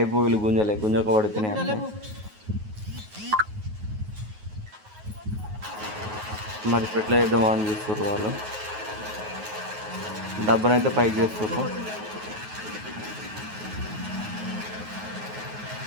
వీళ్ళు గుంజక పడిపోయినాయి అంటే మరి ఎట్లా చేద్దామో అని చూస్తారు వాళ్ళు. డబ్బనైతే పైకి చేస్తారు,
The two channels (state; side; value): late; left; 9.4 ms